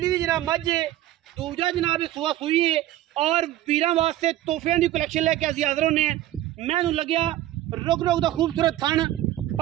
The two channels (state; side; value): quieter; left; 14.1 dB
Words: की जनाब मझ है। दूजा जनाब सुआ सूई है और वीरां वास्ते तोहफियां की कलैक्शन लैके असीं हाज़र होने। मैं लग्या रुक रुक का खूबसूरत थन